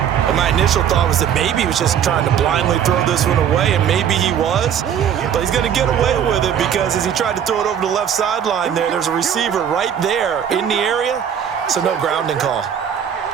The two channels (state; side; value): quieter; left; 8.8 dB